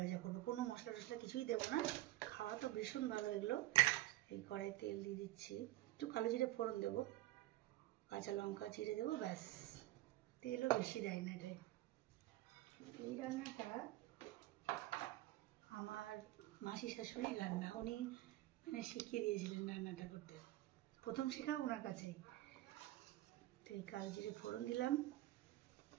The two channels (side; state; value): left; quieter; 16.2 dB